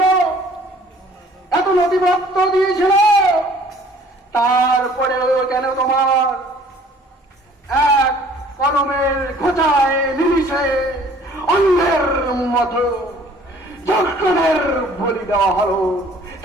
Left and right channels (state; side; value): normal; both; correlation 0.54